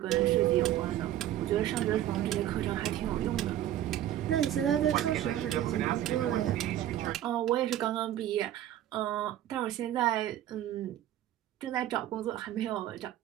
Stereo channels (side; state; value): left; quieter; 12.4 dB